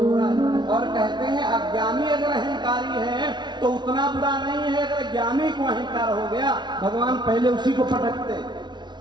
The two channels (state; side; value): late; left; 0.21 ms